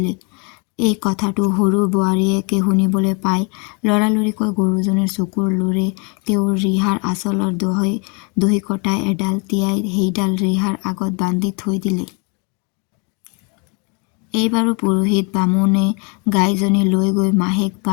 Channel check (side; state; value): right; quieter; 33.8 dB